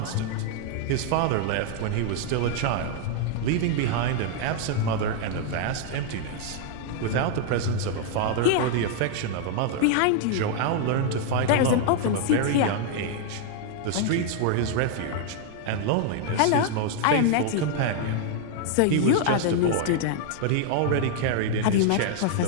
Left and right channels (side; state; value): both; different; correlation 0.00